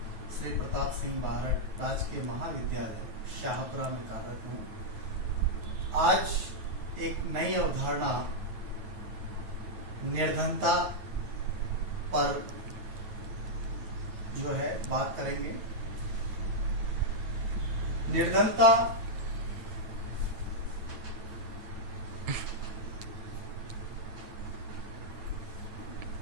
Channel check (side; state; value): left; late; 9.3 ms